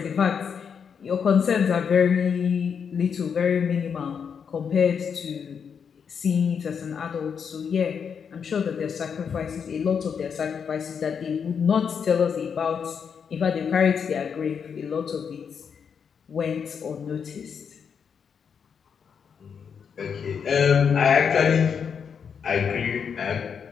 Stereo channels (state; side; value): quieter; right; 6.8 dB